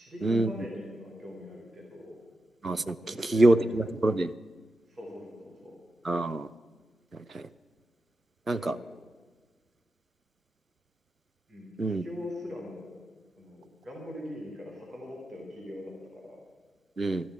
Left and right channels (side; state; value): both; normal; correlation 0.89